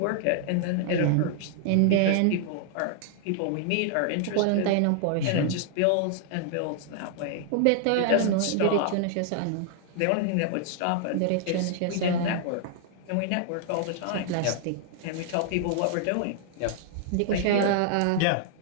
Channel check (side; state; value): both; different; correlation 0.00